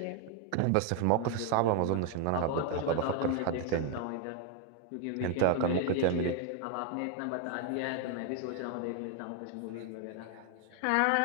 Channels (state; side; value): different; both; correlation 0.00